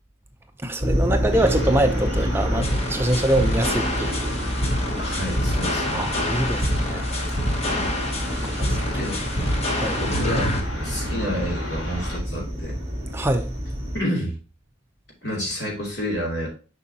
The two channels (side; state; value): both; normal; correlation 0.66